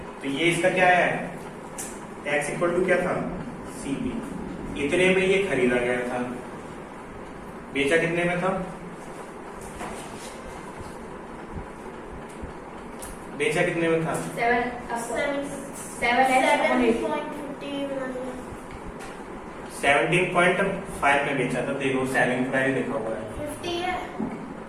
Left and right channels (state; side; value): identical; both; correlation 1.00